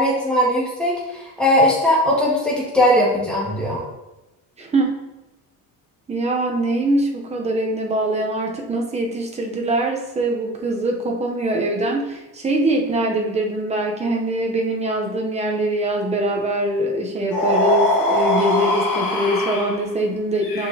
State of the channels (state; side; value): normal; both; correlation 0.33